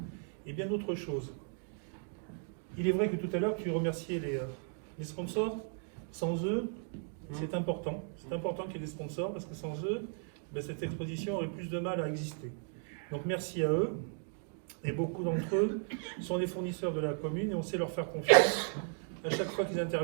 et bien d'autres choses. Il est vrai que tout à l'heure, tu remerciais les sponsors. Sans eux, c'est important. C'est important qu'il y ait des sponsors, parce que sans eux, cette exposition aurait plus de mal à exister. Donc merci à eux. Et beaucoup d'entre eux sont des fournisseurs de la commune, et on sait leur faire confiance à chaque fois qu'ils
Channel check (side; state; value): left; silent; 54 dB below the other